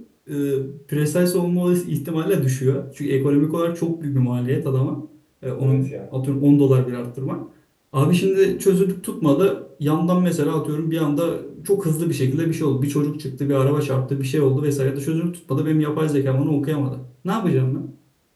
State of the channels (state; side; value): identical; both; correlation 1.00